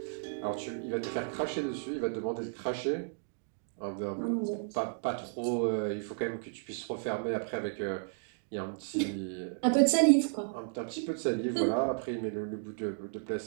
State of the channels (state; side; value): silent; left; digital silence